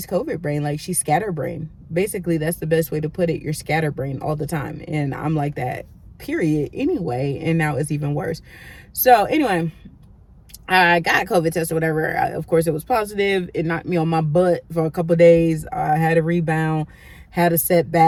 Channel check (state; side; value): identical; both; correlation 1.00